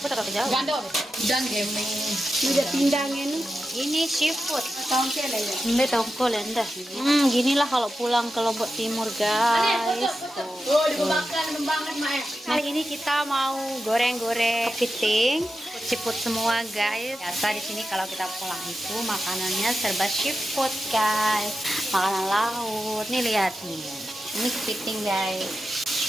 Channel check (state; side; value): normal; both; correlation 0.90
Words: tak jauh? Gandol. Dan gemeng. Udah pindangnya nih. Ini seafood. Tahun kele ya. Ini tongkol enda. Ginilah kalau pulang ke Lombok Timur, guys. Oh, dibakar banget, Mak. Kali ini kita mau goreng-goreng kepiting, seafood semua, guys. Biasa di sini kalau kita pulang itu makanannya serba seafood, guys. Makanan laut. Nih lihat nih. Ini kepiting, guys.